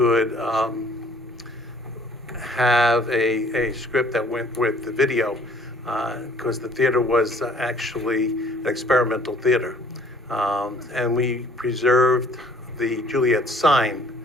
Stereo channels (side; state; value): both; normal; correlation 0.57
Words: have a script that went with the video, because the theater was actually an experimental theater. And we preserved the Juliet sign